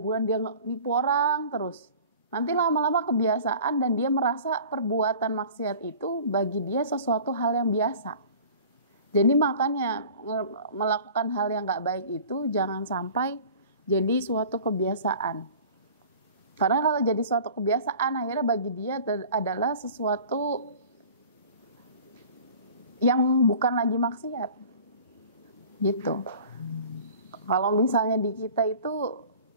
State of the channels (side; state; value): both; inverted; correlation -0.44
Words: bulan dia nipu orang terus. Nanti lama-lama kebiasaan dan dia merasa perbuatan maksiat itu bagi dia sesuatu hal yang biasa. Jadi makanya melakukan hal yang gak baik itu jangan sampai jadi suatu kebiasaan. Karena kalau jadi suatu kebiasaan akhirnya bagi dia adalah sesuatu yang bukan lagi maksiat. Gitu. Kalau misalnya di kita itu